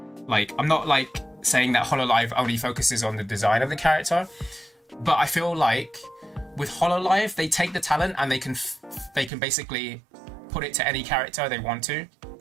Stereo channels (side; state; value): left; drops out; at 9.3 s